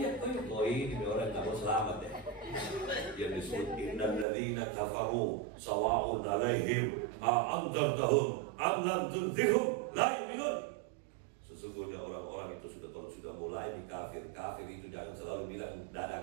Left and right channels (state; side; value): drops out; left; at 4.2 s